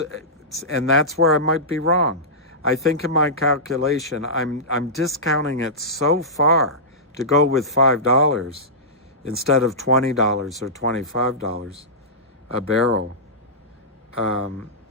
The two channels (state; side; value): normal; both; correlation -0.16